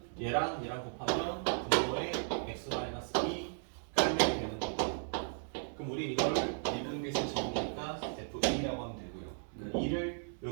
얘랑 곱하면 분모의 x 마이너스 2 깔면 되는 거고. 그럼 우리 이거를 미분계수 정의니까 f2라고 하면 되고요. 네. 2를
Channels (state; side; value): silent; left; digital silence